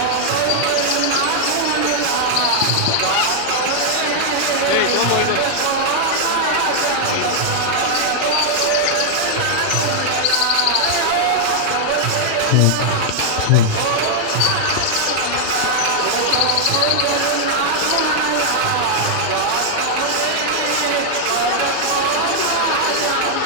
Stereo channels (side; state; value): both; different; correlation 0.00